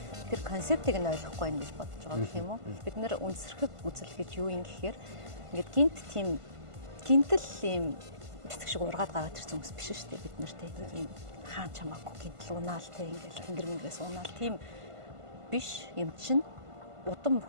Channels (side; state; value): left; late; 1.5 ms